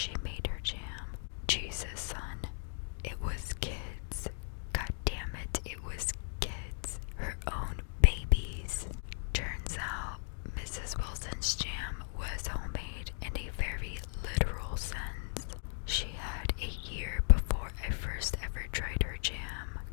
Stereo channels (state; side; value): silent; right; 54 dB below the other